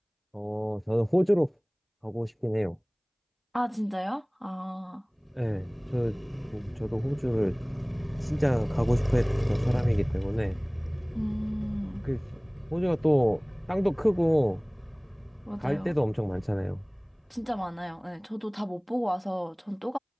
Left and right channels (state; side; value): identical; both; correlation 1.00